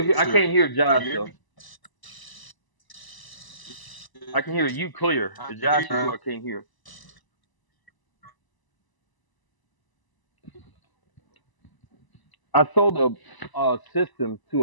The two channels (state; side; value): late; right; 1.0 ms